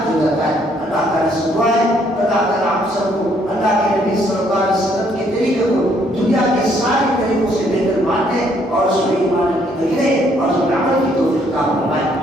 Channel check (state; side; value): normal; both; correlation 0.68